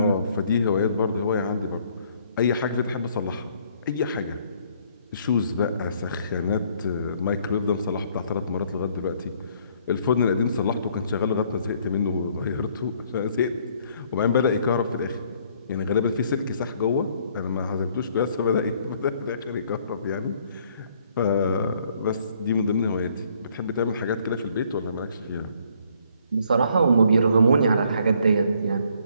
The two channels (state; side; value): inverted; both; correlation -0.64